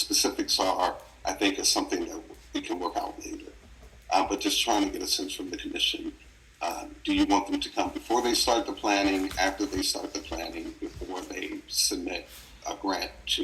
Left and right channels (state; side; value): identical; both; correlation 1.00